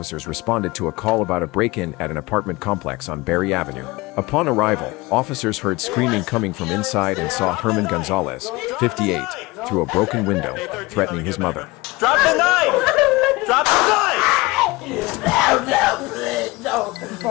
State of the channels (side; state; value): right; quieter; 22.1 dB